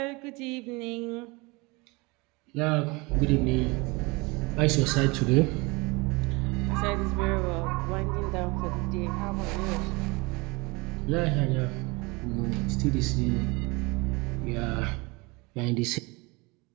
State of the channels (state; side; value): quieter; left; 25.9 dB